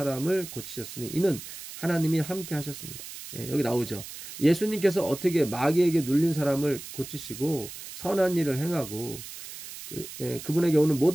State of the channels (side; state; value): right; noise; hiss, 12 dB below the sound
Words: 고치셨으니 이는 하나님이 함께 하셨습니다. 예, 여기 나오죠. 예수님께서 어떻게 마귀에게 눌린 사람을 고치시고 선한 일을 행하고 그분에게 오는